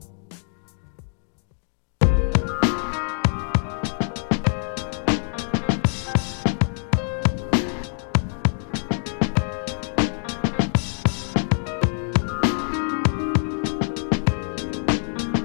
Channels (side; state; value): right; silent; 57 dB below the other